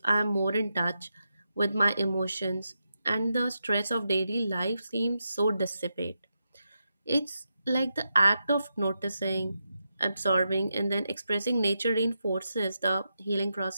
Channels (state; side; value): inverted; both; correlation -0.86